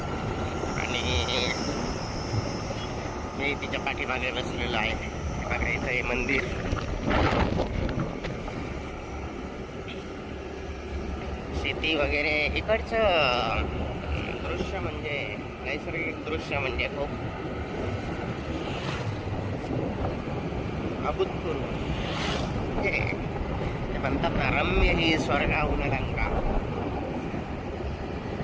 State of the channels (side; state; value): both; identical; correlation 1.00